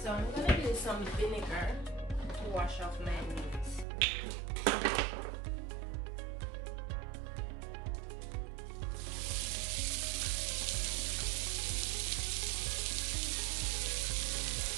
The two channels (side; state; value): left; drops out; at 3.9 s